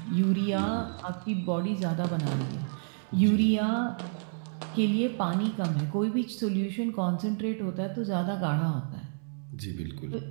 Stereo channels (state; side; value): silent; left; 58 dB below the other